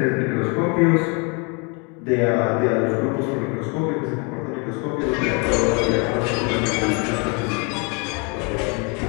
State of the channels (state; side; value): quieter; right; 32.9 dB